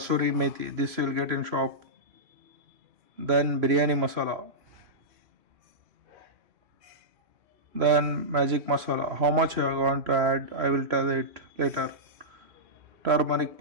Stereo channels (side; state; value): left; late; 3.0 ms